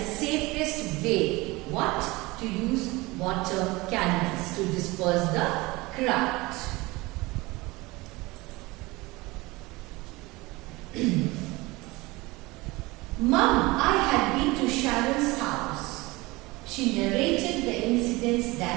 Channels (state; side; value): quieter; left; 22.2 dB